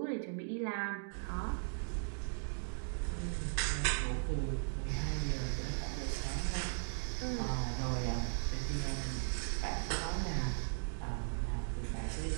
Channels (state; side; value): silent; left; digital silence